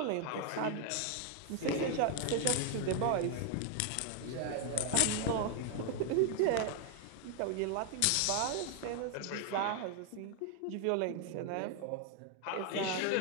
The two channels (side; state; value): both; different; correlation 0.00